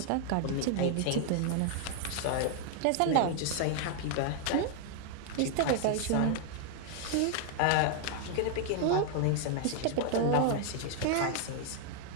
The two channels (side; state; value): both; different; correlation 0.00